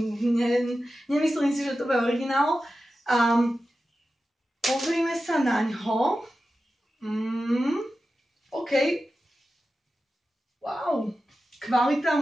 nemyslím si, že to bude originál. Pozrime sa na ňo. OK. Wow. Kvalita,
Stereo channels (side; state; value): both; normal; correlation 0.93